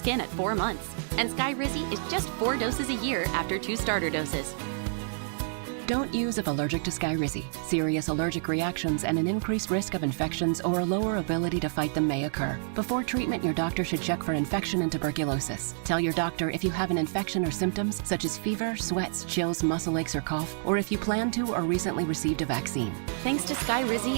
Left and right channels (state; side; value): silent; left; digital silence